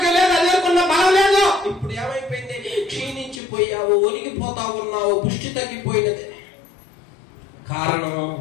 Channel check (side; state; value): right; drops out; at 3.4 s